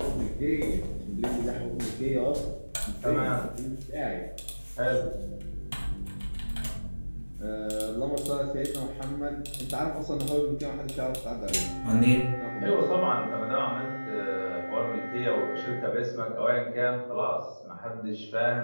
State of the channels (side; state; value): both; inverted; correlation -1.00